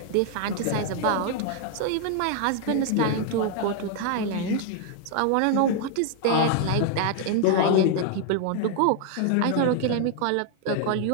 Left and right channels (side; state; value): both; different; correlation 0.00